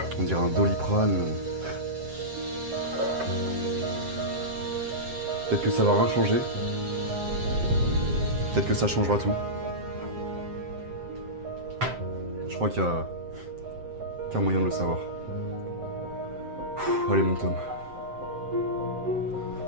On dirait un Doliprane. Peut-être que ça va rien changer. Peut-être que ça changera tout. Je crois qu'il y a qu'un moyen de le savoir. Allez mon Tom.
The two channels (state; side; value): late; left; 7.7 ms